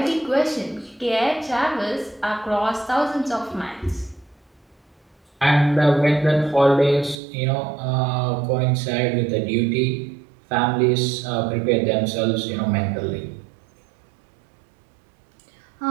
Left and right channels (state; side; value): drops out; left; at 7.2 s